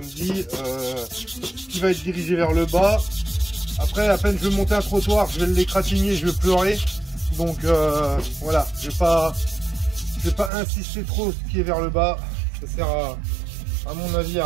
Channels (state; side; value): drops out; left; at 10.5 s